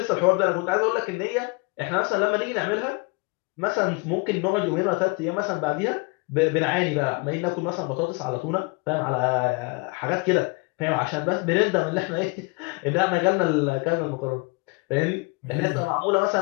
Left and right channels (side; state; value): right; quieter; 29.2 dB